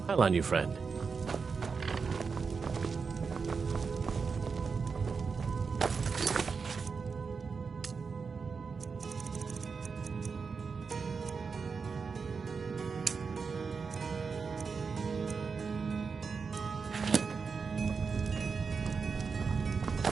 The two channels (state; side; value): quieter; left; 5.2 dB